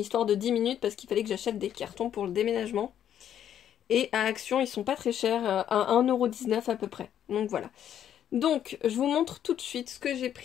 de 10 minutes parce qu'il fallait que j'achète des cartons pour le déménagement. Et à Action, ils sont pas très chers, à 1,19 € à peu près. Donc voilà. Donc, je vous montre tout de suite ce que j'ai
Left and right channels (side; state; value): right; quieter; 10.0 dB